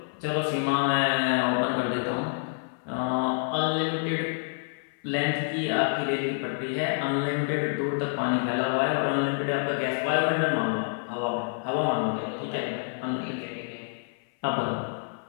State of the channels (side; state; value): right; silent; 60 dB below the other